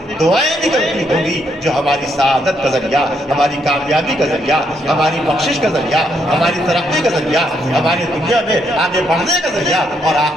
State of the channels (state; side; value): normal; both; correlation 0.75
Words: دعائیں نکلتی ہوں گی جو ہماری سعادت کا ذریعہ، ہماری کامیابی کا ذریعہ، ہماری بخشش کا ذریعہ، ہماری ترقی کا ذریعہ، ہماری دنیا میں آگے بڑھنے کا ذریعہ اور